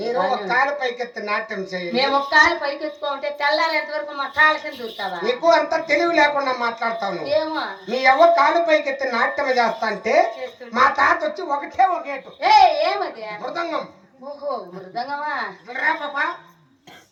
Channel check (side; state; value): both; identical; correlation 1.00